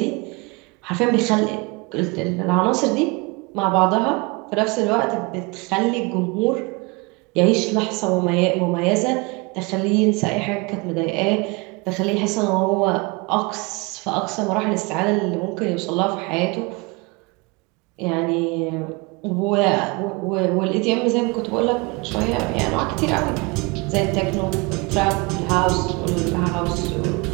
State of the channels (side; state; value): left; quieter; 27.6 dB